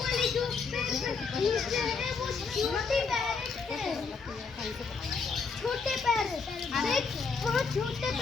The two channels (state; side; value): quieter; right; 5.0 dB